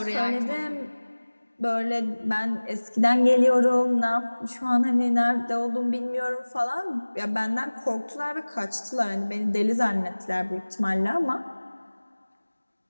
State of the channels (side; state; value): both; inverted; correlation -1.00